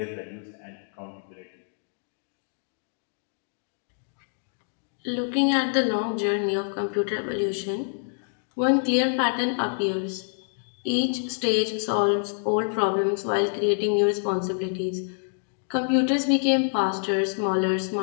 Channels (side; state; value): right; silent; digital silence